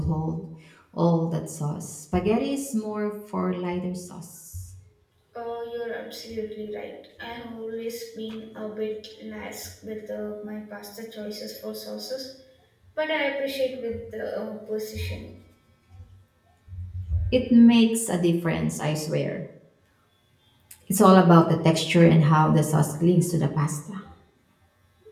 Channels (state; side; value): identical; both; correlation 1.00